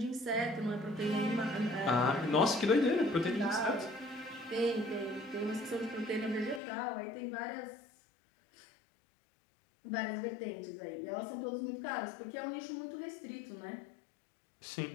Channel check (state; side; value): drops out; right; at 6.6 s